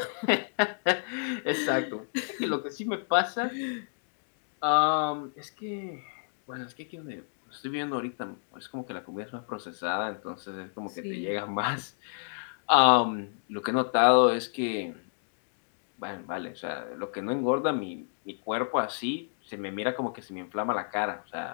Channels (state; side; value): silent; right; digital silence